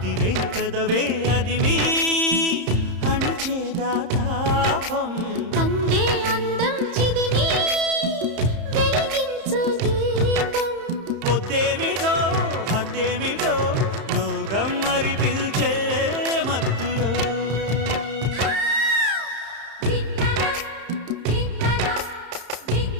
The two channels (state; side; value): late; left; 30 ms